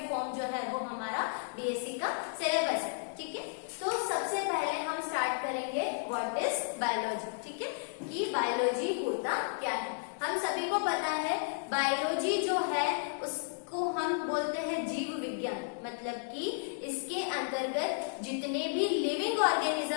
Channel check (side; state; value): right; silent; digital silence